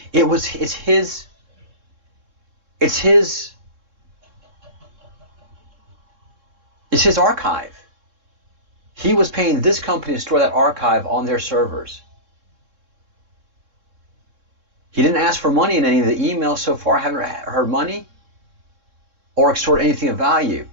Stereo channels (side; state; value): left; late; 3.7 ms